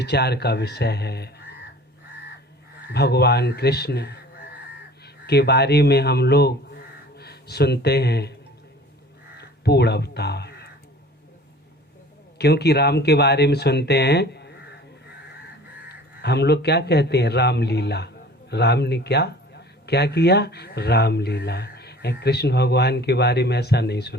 का विषय है भगवान कृष्ण के बारे में हम लोग सुनते हैं पूर्ण अवतार, क्योंकि राम के बारे में सुनते हैं हम लोग क्या कहते हैं, रामलीला। राम ने क्या क्या किया, रामलीला। कृष्ण भगवान के बारे में ऐसा नहीं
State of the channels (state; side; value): normal; both; correlation 0.46